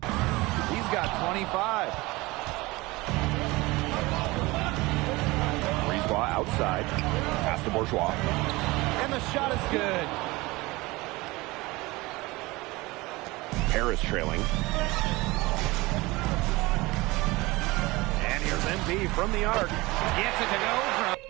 He's got 25. Brisebois outside. Pass to Bourgeois. And the shot is good. Paris trailing. And here's MP from the arc. Gets it to go from...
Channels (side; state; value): left; quieter; 21.8 dB